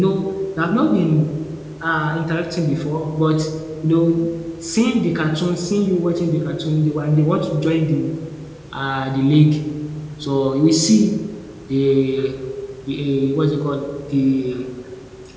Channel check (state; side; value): identical; both; correlation 1.00